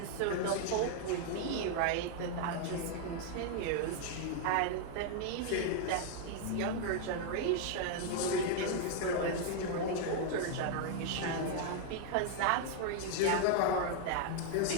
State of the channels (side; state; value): both; different; correlation 0.00